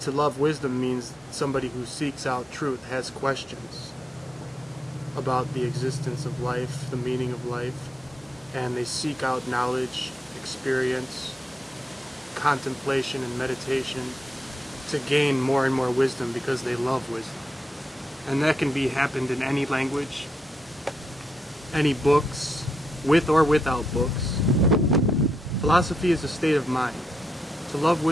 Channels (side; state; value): both; normal; correlation 0.83